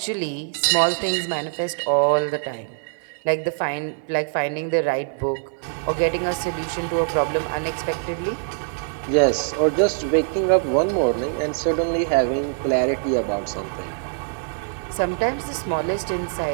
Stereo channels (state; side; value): silent; left; digital silence